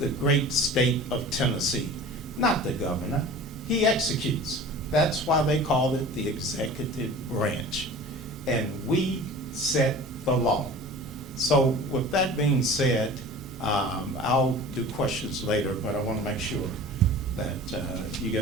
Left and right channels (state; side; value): normal; both; correlation 0.40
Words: great state of Tennessee, not the governor. He executes. That's why they call it the executive branch. And we set the law. So with that being said, I'll do questions later, but I want to make sure that you